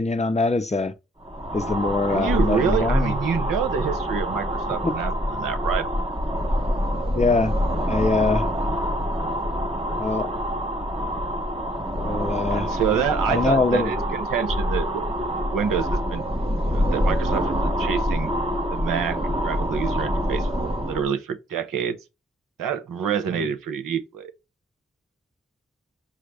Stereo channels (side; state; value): both; normal; correlation 0.61